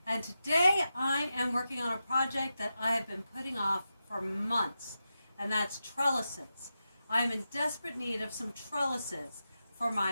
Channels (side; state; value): both; inverted; correlation -0.90